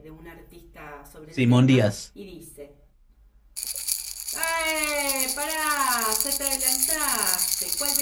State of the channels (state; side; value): identical; both; correlation 1.00